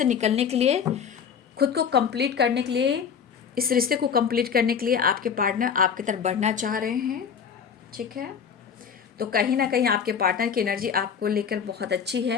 निकलने के लिए, खुद को कंप्लीट करने के लिए, इस रिश्ते को कंप्लीट करने के लिए आपके पार्टनर आपकी तरफ बढ़ना चाह रहे हैं, ठीक है। तो कहीं ना कहीं आपके पार्टनर की एनर्जी आपको लेकर बहुत अच्छी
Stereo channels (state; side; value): quieter; right; 7.1 dB